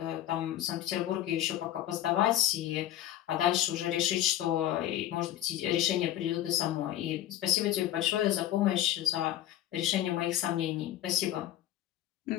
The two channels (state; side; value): quieter; right; 12.8 dB